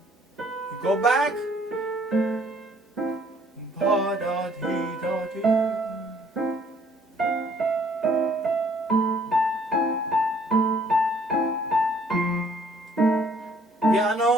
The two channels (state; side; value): normal; both; correlation 0.61